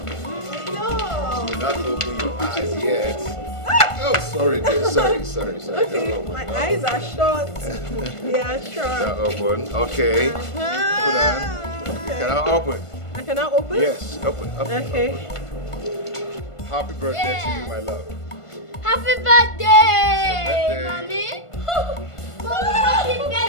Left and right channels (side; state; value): right; late; 1.5 ms